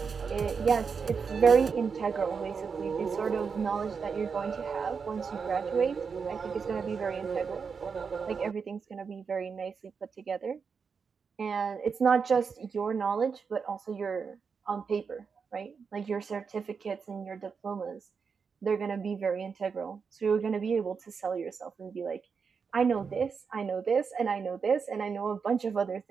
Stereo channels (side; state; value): left; quieter; 5.7 dB